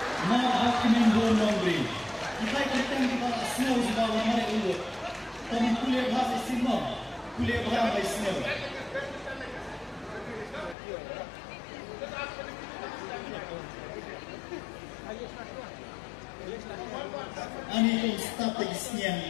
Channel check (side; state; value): right; drops out; at 10.8 s